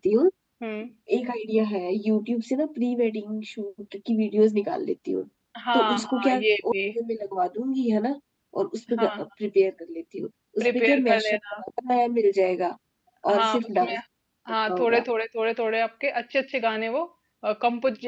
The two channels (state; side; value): identical; both; correlation 1.00